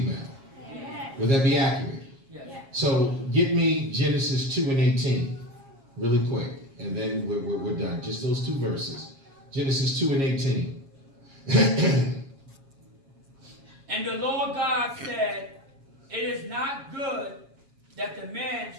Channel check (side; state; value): left; late; 7.4 ms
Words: Would that be accurate? So get me Genesis 2:18 really quick, and then we're done. Just those two verses. Genesis 2:18. And the Lord God said, it is not good that the man